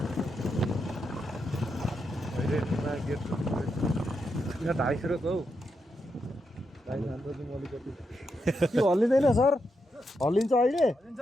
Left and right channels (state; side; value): normal; both; correlation 0.84